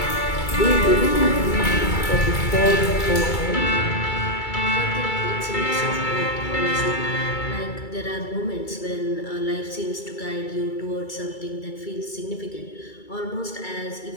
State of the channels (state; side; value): late; right; 2.3 ms